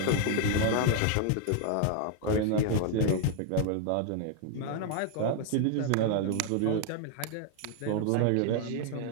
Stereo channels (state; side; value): different; both; correlation 0.00